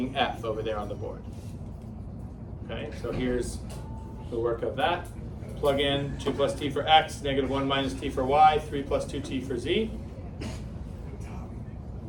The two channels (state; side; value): identical; both; correlation 1.00